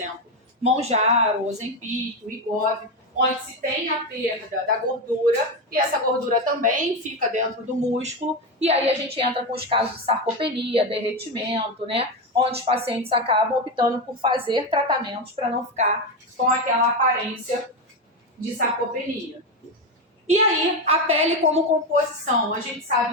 Mounjaro, Ozempic, Wegovy, onde se tem a perda da gordura e essa gordura também fica dentro do músculo. E aí a gente entra com os casos de sarcopenia, derretimento, né? Onde os pacientes acabam optando por fazer tratamentos para não ficar com aquela aparência de sarcopenia. E aí, a pele como composição. A gente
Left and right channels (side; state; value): both; normal; correlation 0.13